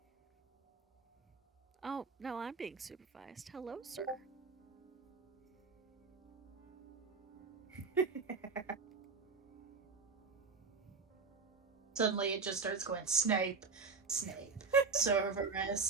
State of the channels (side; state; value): left; quieter; 4.7 dB